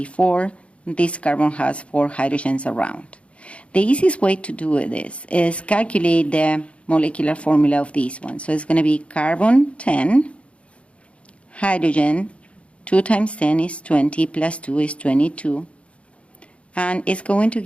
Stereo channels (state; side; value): late; right; 0.061 ms